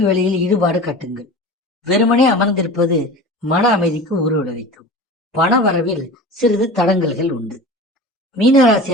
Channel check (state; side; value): normal; both; correlation 0.34